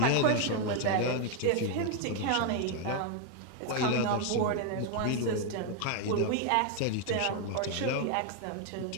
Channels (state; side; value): different; both; correlation 0.01